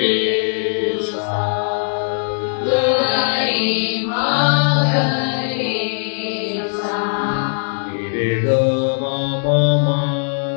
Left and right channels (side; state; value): right; silent; digital silence